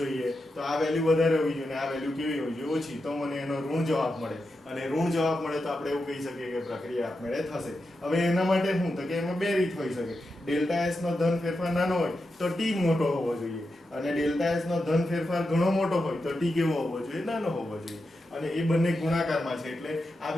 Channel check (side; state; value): both; normal; correlation 0.88